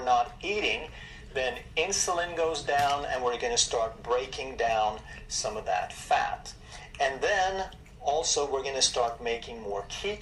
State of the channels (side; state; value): both; identical; correlation 1.00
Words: not eating, then insulin goes down, and we're going to start breaking down some of that fat. And then also we're going to start making more